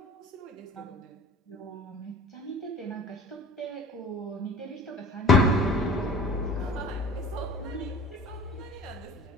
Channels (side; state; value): both; normal; correlation 0.43